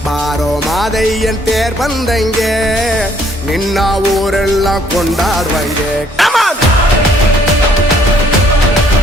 ಬಾರೋ ಮಾದಯ್ಯನ್ ತೇರ್ ಬಂದಂಗೆ ನಿನ್ನ ಊರೆಲ್ಲ ಕೊಂಡಾಡುವಂಗೆ.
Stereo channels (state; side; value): normal; both; correlation 0.64